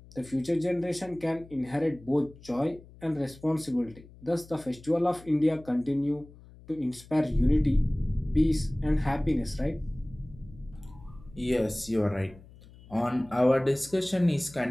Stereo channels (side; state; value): left; noise; hum, 21 dB below the sound